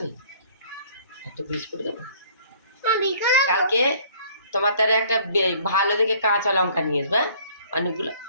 একটা বিস্কুট দেবো কালকে। তোমার তার একটা ভালো দেখে কাঁচা লঙ্কা নিয়ে আসবে, হ্যাঁ? অনেকগুলো।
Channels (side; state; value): both; inverted; correlation -0.56